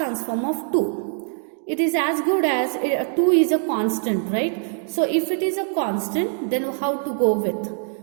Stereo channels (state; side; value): silent; left; digital silence